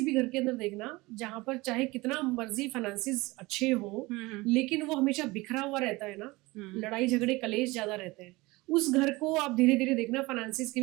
भी घर के अंदर देखना, जहां पर चाहे कितना मर्जी फाइनेंसिस अच्छे हो, लेकिन वो हमेशा बिखरा हुआ रहता है ना, लड़ाई झगड़े कलेश ज्यादा रहते हैं, उस घर को आप धीरे धीरे देखना फाइनेंसिस की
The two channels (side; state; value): left; quieter; 22.1 dB